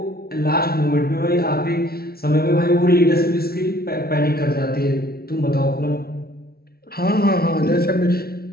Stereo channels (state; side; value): late; right; 0.44 ms